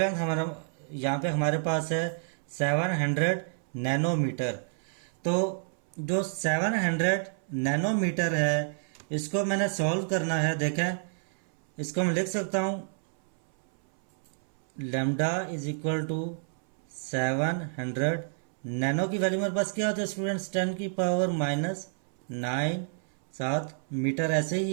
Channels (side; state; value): left; silent; 58 dB below the other